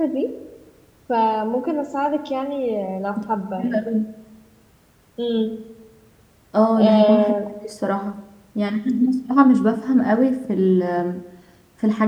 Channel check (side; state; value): both; identical; correlation 1.00